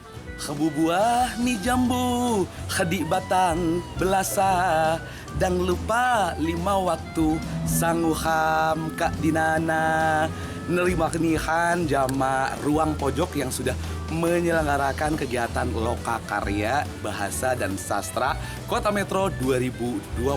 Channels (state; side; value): identical; both; correlation 1.00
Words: Kebu buah mi jambu, kedik batang belasa, dan lupa 5 waktu sanguham kak dinana. Nerima kenihan jama ruang pojok yang sudah menyelenggarakan kegiatan Lokakarya Bahasa dan Sastra Kota Metro 2024.